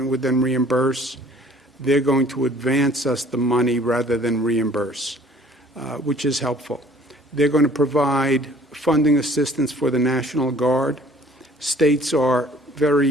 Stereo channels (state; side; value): normal; both; correlation 0.54